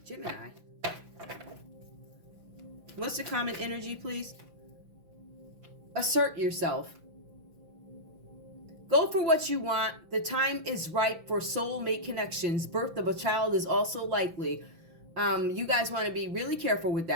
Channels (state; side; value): late; left; 6.0 ms